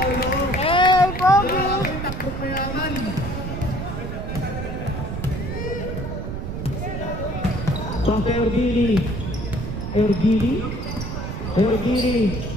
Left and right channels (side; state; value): right; noise; rumble, 5 dB below the sound